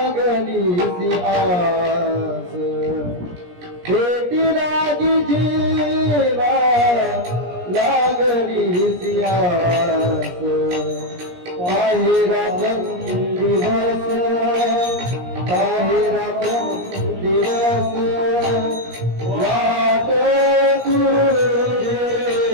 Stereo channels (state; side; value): late; left; 17 ms